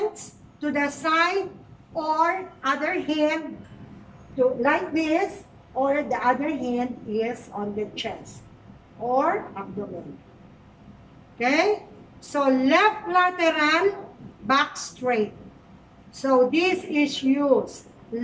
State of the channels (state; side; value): identical; both; correlation 1.00